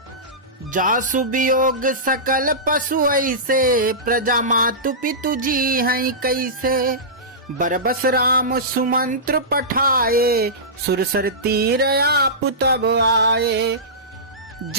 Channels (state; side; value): normal; both; correlation -0.18